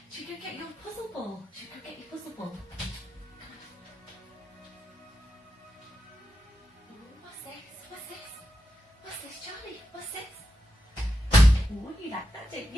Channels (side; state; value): both; normal; correlation 0.87